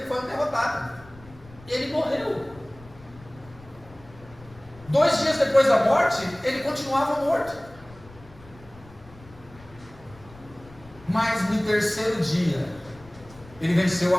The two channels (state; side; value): noise; left; rumble, 22 dB below the sound